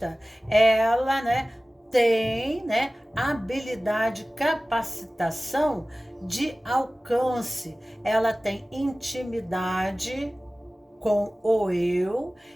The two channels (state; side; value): normal; both; correlation 0.97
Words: ela, né, tem, né, habilidade, capacitação de alcance. Ela tem intimidade com o eu